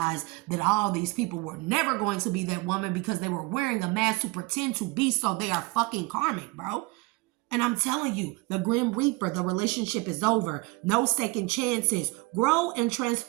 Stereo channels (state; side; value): quieter; left; 24.6 dB